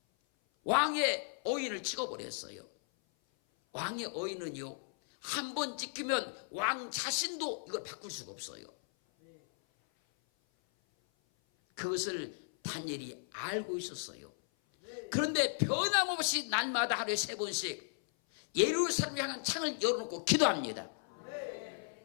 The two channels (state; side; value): silent; right; 54 dB below the other